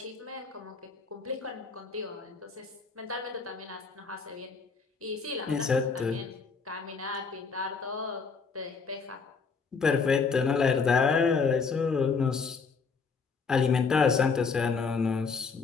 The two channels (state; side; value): quieter; right; 5.1 dB